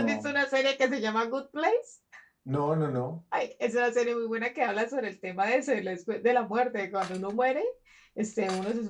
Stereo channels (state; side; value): identical; both; correlation 1.00